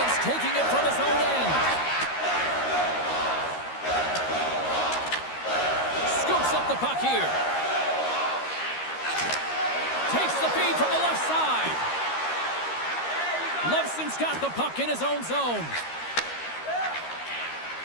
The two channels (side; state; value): right; late; 13 ms